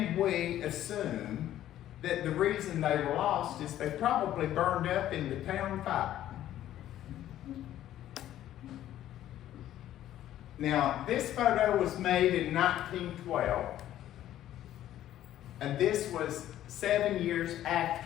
we assume that the reason they were lost is they probably burned up in the town fire. Now, this photo was made in 1912, and this was 7 years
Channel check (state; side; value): quieter; right; 12.5 dB